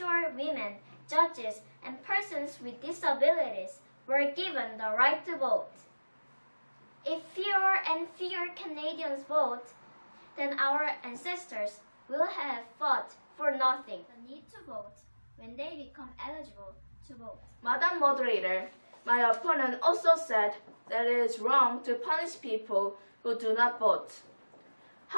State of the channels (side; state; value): both; inverted; correlation -1.00